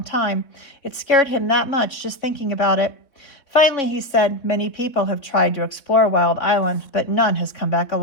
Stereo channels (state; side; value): late; right; 3.4 ms